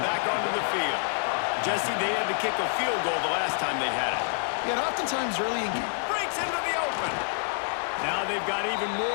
back onto the field. Jesse, they had to kick a field goal the last time they had it. Yeah, and oftentimes early in... Breaks into the open. Now they've got even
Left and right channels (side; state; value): right; silent; 60 dB below the other